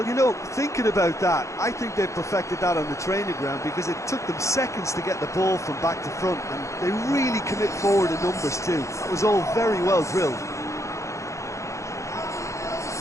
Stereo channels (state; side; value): late; right; 0.15 ms